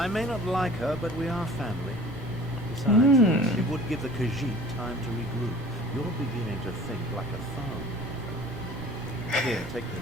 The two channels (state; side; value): normal; both; correlation 0.45